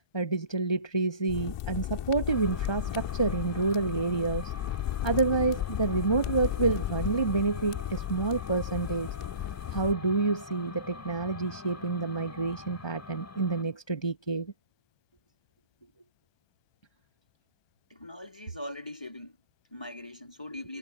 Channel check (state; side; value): late; right; 1.2 ms